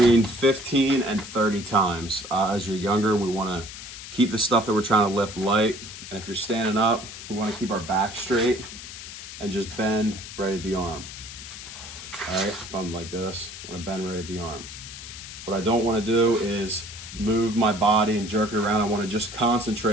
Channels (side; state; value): left; noise; hiss, 12 dB below the sound